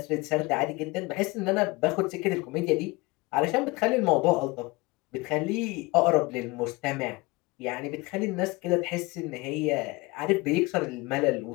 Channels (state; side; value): quieter; right; 23.6 dB